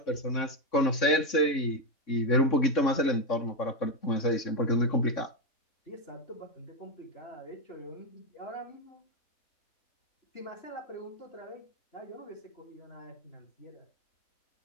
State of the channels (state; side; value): late; right; 3.6 ms